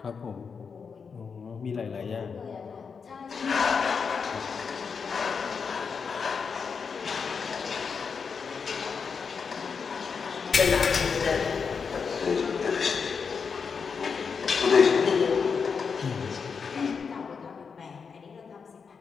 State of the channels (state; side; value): quieter; right; 5.8 dB